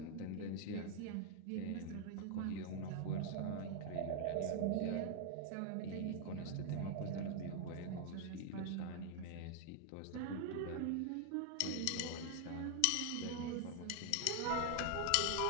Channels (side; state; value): both; different; correlation 0.00